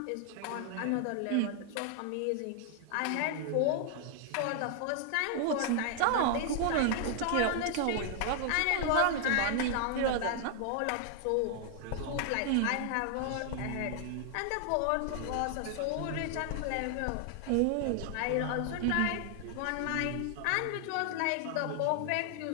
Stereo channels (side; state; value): both; different; correlation 0.00